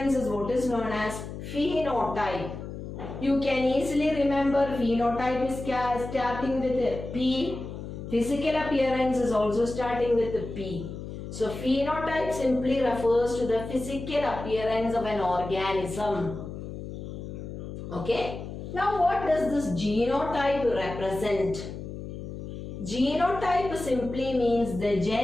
is what is known as phenotype. You can easily remember phenotype is starting with a P. Physical appearance is also starting with a P. So phenotype simply refers to the physical appearance of an organism. Okay. Now what does this genotype represent? Genotype simply means the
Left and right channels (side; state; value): left; noise; hum, 9 dB below the sound